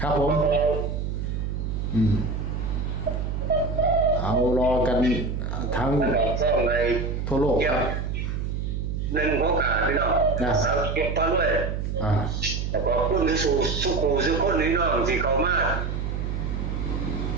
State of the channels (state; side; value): noise; right; hum, 2 dB below the sound